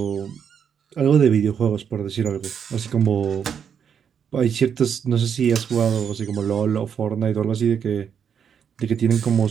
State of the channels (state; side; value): quieter; left; 7.6 dB